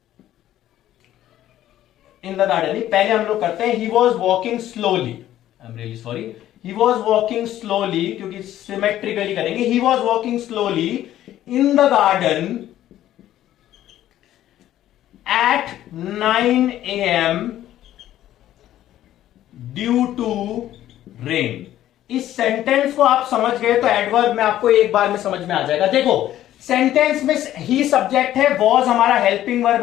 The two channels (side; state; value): right; quieter; 12.8 dB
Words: in the garden, पहले हम लोग करते हैं he was walking slowly, I am really sorry, he was walking slowly, क्योंकि सिमेट्रिकली करेंगे, he was walking slowly in the garden at 9 AM due to rain. इस sentence को आप समझ गए तो एडवर्ब में आपको एक बार में समझ में आ जाएगा। देखो सेंटेंस में ही सब्जेक्ट है, वॉज हमारा हेल्पिंग वर्ब